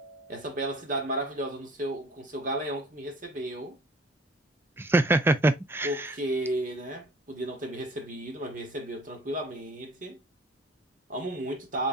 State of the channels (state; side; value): normal; both; correlation 0.51